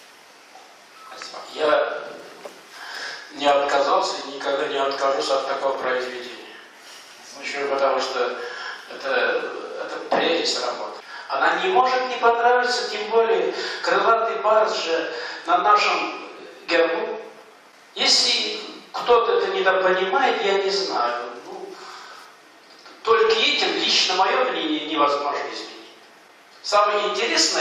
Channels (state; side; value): identical; both; correlation 1.00